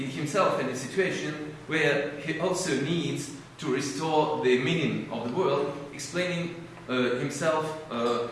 himself in a situation where he also needs to restore the meaning of the world, explaining himself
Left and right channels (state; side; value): identical; both; correlation 1.00